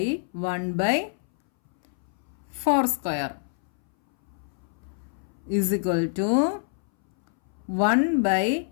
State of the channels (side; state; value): right; silent; 60 dB below the other